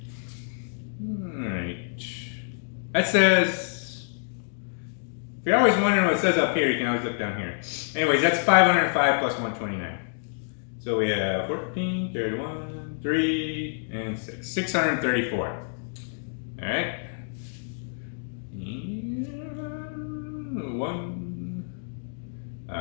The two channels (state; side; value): silent; right; digital silence